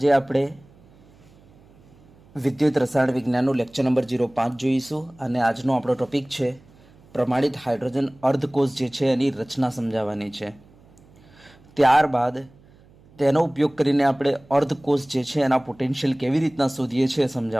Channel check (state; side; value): noise; right; hum, 27 dB below the sound